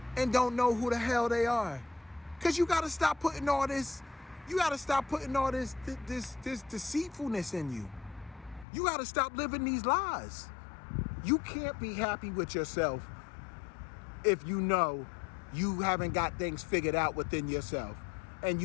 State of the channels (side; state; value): right; drops out; at 8.7 s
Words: and don't know who the hell they are. Because you got to stop putting all this, this deceitfulness in you. You got to stop living these lies. You can't be happy with yourself if you know you haven't got things figured out within yourself and